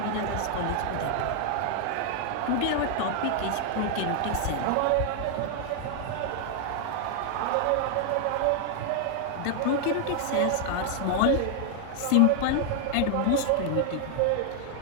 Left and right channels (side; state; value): both; different; correlation 0.00